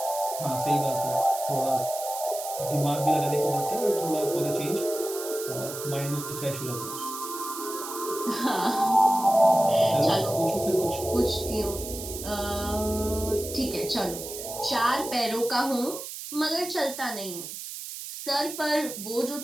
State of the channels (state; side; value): noise; right; hiss, 9 dB below the sound